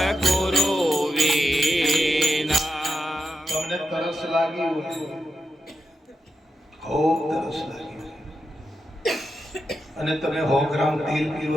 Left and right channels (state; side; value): normal; both; correlation 0.86